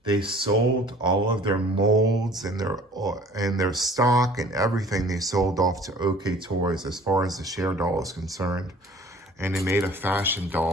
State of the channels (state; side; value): normal; both; correlation 0.49